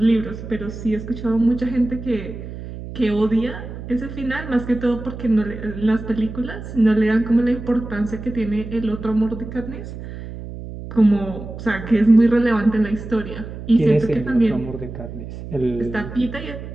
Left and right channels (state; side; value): noise; right; hum, 10 dB below the sound